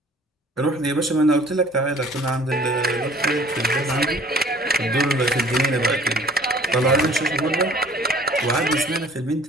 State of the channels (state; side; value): normal; both; correlation 0.51